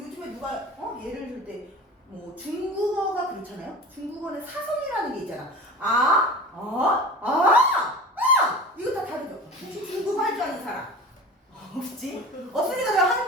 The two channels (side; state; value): both; normal; correlation 0.36